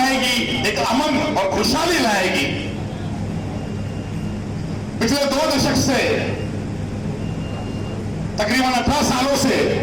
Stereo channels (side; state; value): left; noise; hum, 23 dB below the sound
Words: एक अमन और खुशहाली लाएगी। पिछले 2 दशक से, तकरीबन 18 सालों से